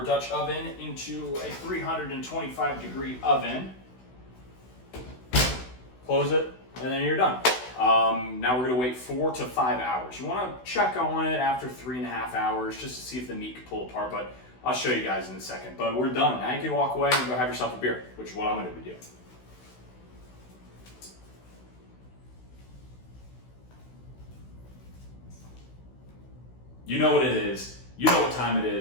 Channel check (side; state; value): right; late; 16 ms